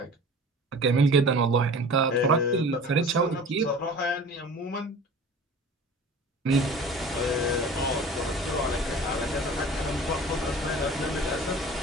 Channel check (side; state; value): both; normal; correlation 0.41